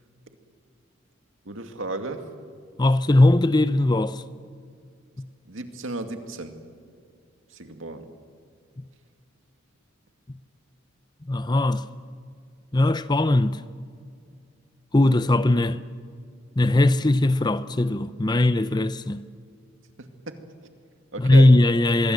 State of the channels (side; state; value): both; normal; correlation 0.89